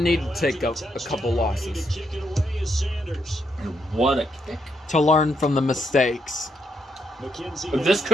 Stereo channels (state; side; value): normal; both; correlation 0.78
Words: to take a couple losses And what a kick. to learn from the mistakes. But this